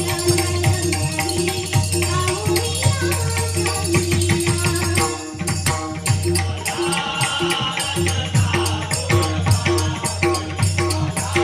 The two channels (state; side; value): identical; both; correlation 1.00